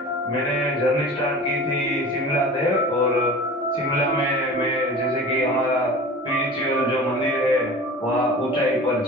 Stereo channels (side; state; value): both; normal; correlation 0.38